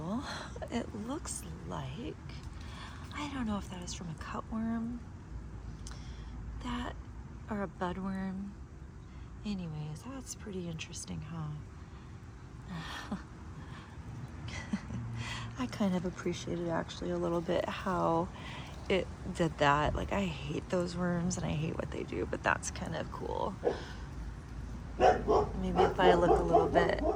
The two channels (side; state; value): both; identical; correlation 1.00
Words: It looks like, I don't know if that is from a cutworm, or a budworm. Anyways, that's pretty interesting, huh? I kind of appreciated actually a little bit how it did that. Like, I hate those worms and I hate what they do, but that's kind of cool. Maybe if I look a little bit